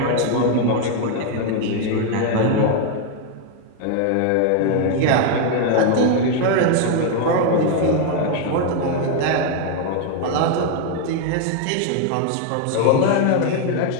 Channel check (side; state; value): both; different; correlation 0.00